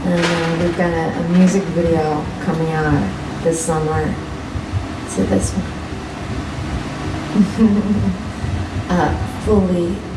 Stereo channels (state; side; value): identical; both; correlation 1.00